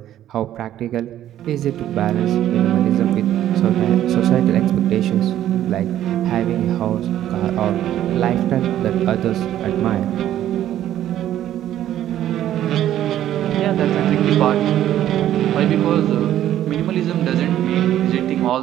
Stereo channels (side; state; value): left; quieter; 12.1 dB